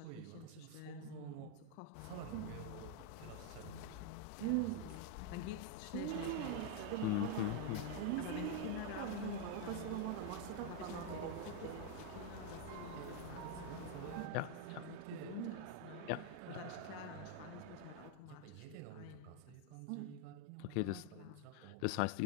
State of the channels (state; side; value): different; both; correlation 0.00